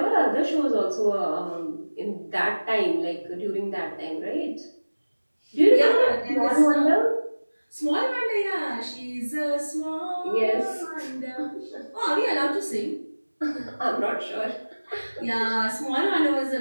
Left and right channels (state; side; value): inverted; both; correlation -1.00